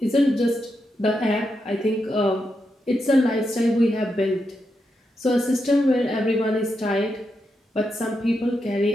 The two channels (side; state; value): both; normal; correlation 0.85